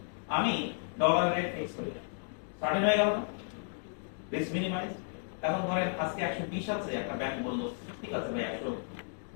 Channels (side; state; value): right; silent; digital silence